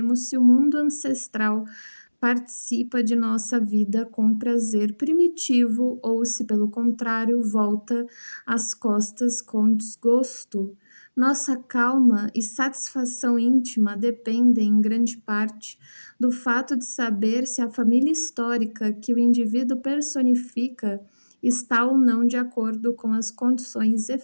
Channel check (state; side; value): inverted; both; correlation -1.00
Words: se o mundo ancestral participa de nossa vida com prazer primitivo ou se, pelo contrário, volta as costas com desgosto. Nossa calma e satisfação íntima dependem, em grande parte, do fato de saber se a família histórica que o indivíduo personifica está ou não de acordo com as condições